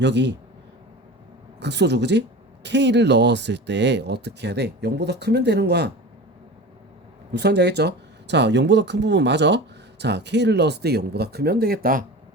극소죠, 그지? k를 넣었을 때 어떻게 해야 돼? 0보다 크면 되는 거야. 무슨 말인지 알겠죠? 자, 0보다 큰 부분 맞아? 자, k를 넣었을 때 0보다 크면 되겠다.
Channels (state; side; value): normal; both; correlation 0.33